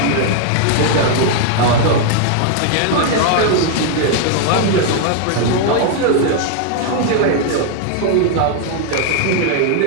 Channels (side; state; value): both; different; correlation 0.00